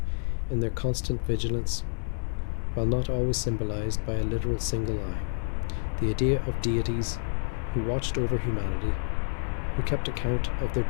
in their constant vigilance, while not always symbolized by a literal single eye. The idea of deities who watched over humanity, who kept account of their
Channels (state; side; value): silent; right; digital silence